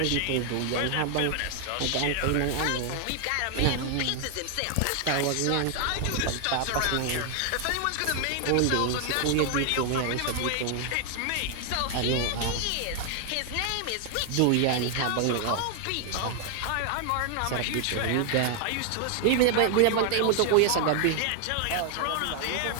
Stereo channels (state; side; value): different; both; correlation 0.00